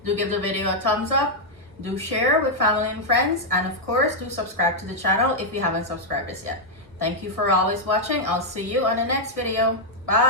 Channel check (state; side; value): late; left; 1.4 ms